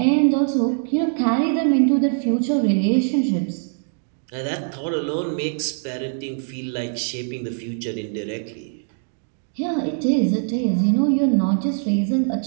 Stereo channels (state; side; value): silent; left; 64 dB below the other